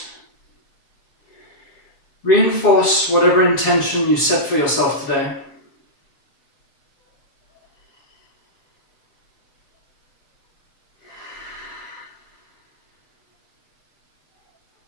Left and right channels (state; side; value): late; right; 7.3 ms